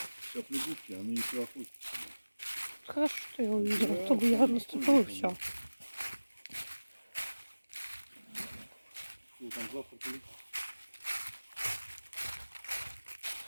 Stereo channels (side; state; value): both; inverted; correlation -1.00